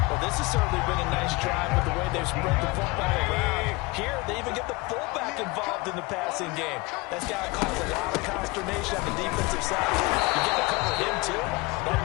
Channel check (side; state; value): right; quieter; 24.3 dB